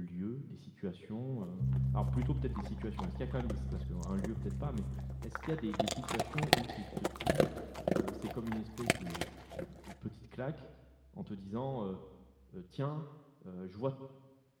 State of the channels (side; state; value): both; identical; correlation 1.00